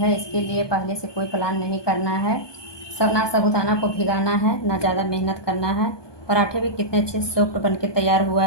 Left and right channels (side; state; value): right; late; 1.2 ms